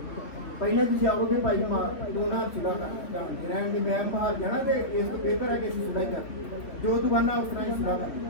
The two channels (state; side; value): late; right; 3.7 ms